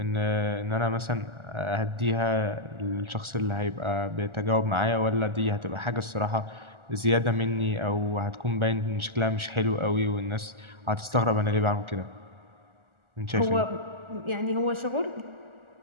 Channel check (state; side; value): late; left; 1.4 ms